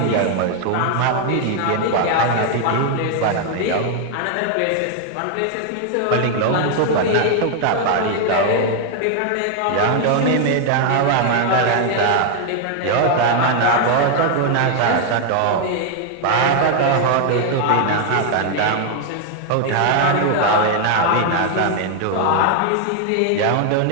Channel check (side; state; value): both; different; correlation 0.00